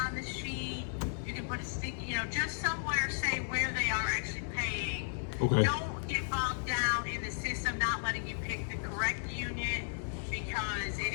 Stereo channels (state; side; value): silent; right; digital silence